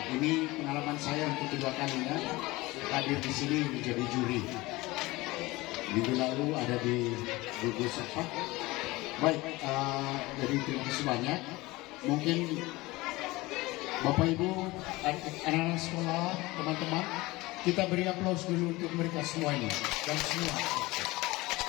Ini pengalaman saya untuk kedua kalinya hadir di sini menjadi juri. Minggu lalu ada di gugus apa? Baik, jadi terima kasih banyak. Mungkin Bapak Ibu, anak-anak sekolah, teman-teman, kita beri aplaus dulu untuk mereka semuanya dan semua.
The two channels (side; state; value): right; quieter; 20.9 dB